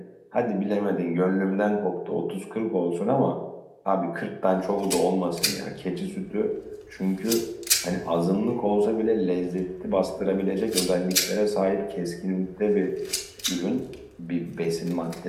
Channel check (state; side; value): identical; both; correlation 1.00